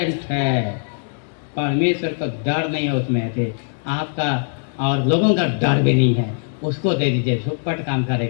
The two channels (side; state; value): right; silent; digital silence